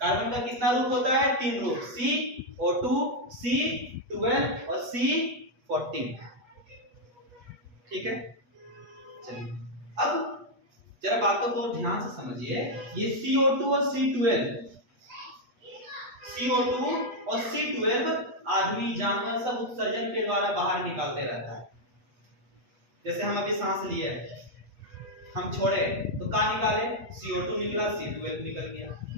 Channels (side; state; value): left; late; 8.2 ms